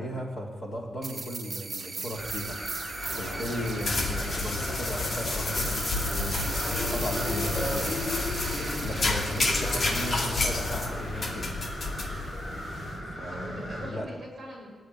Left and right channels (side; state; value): both; normal; correlation 0.80